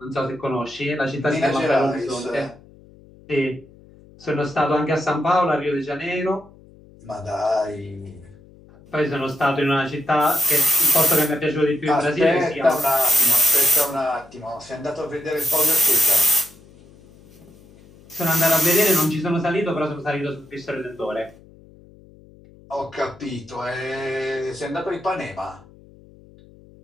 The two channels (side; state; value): left; noise; hum, 24 dB below the sound